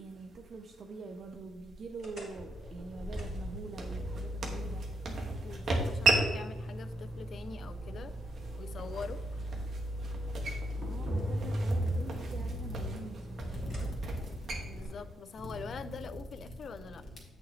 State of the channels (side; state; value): both; normal; correlation 0.80